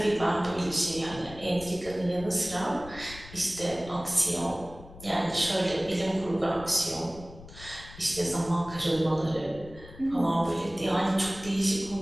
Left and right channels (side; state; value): left; noise; rumble, 16 dB below the sound